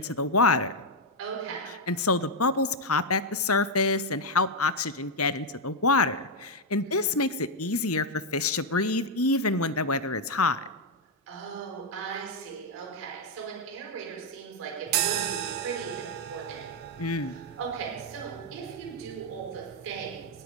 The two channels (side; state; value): both; normal; correlation 0.00